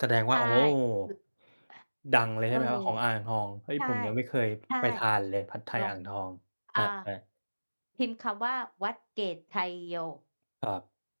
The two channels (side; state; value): both; inverted; correlation -1.00